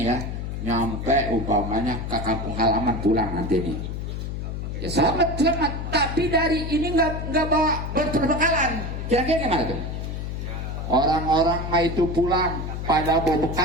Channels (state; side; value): noise; left; hum, 5 dB below the sound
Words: ya nyampe umpamanya ke kampung halaman pulang nanti nih, ya selamat, tapi dari ini nggak bawa berbekalan, kira-kira gimana tuh? Orang-orang mah itu pulang pada bawa